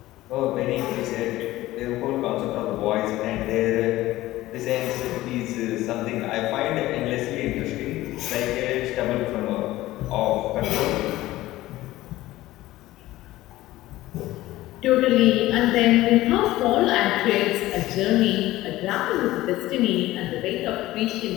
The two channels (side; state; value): right; quieter; 16.7 dB